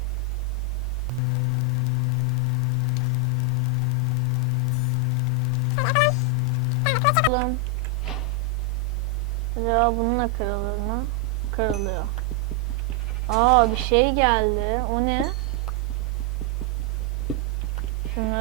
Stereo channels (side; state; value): both; normal; correlation 0.01